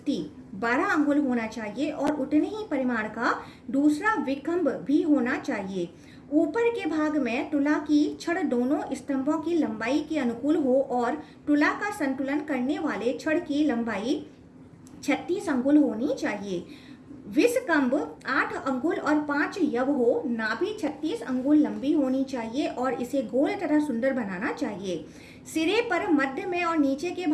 12 अंगुल होना चाहिए और उतने ही परिमाण का दूसरा विखंभ भी होना चाहिए। ऊपर के भाग में तुला की छड़ दोनों स्तंभों की लंबाई के अनुकूल हो और तुला का संतुलन करने वाले छड़ की लंबाई 36 अंगुल होनी चाहिए। विषकंभ 8 अंगुल और 5 यव हो। नाभि 36 अंगुल लंबी होनी चाहिए और इसे गोल तथा सुंदर बनाना चाहिए। सिरे पर, मध्य में और नीचे के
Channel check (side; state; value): both; identical; correlation 1.00